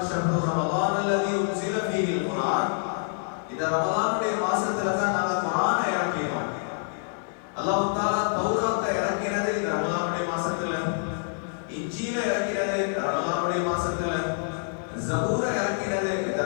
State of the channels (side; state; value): right; silent; digital silence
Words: ஷஹ்ரு ரமலான் அல்லதி உன்ஸில ஃபீஹில் குர்ஆன். இந்த ரமலானுடைய மாசத்துல தான் நாங்க குர்ஆனை இறக்கினோம். அல்லாஹ் தஆலா தௌராத்தை இறக்கினது இந்த ரமலானுடைய மாசத்துல, இன்ஜீல இறக்கினது இந்த ரமலானுடைய மாசத்துல, ஜபூரை இறக்கினது இந்த